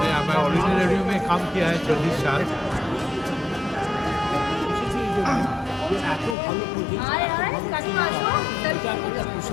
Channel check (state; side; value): drops out; right; at 6.4 s